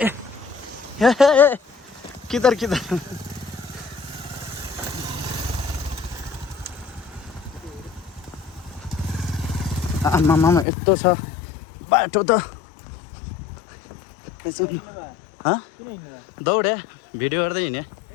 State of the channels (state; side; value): drops out; right; at 10.7 s